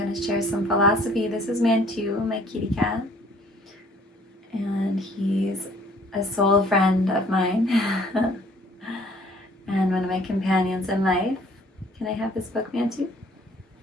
to share some philosophy. This is Mantu, my kitty cat, and he's a soul friend of mine and one of my companions in life. Can I have this book, Mantu?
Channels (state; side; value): normal; both; correlation 0.57